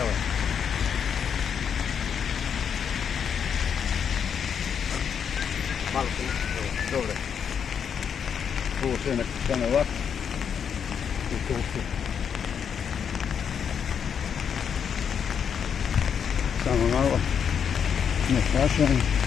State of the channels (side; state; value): right; quieter; 7.5 dB